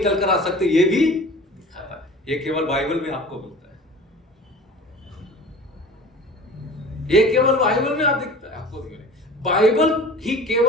कर आ सकते ये भी दिखाता है। ये केवल बाइबल में आपको मिलता है, ये केवल बाइबल में आपको दिखता है। बाइबल ही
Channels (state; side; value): normal; both; correlation 0.41